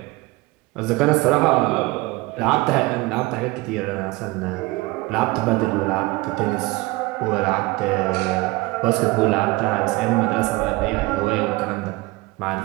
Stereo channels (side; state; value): left; quieter; 21.6 dB